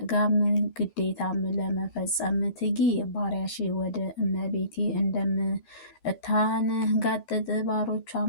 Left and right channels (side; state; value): right; late; 13 ms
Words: ግዴታም ለመፈጸም ትጊ። ባሪያሽ ወደ እመቤቴ እንደምታንጋጥጥ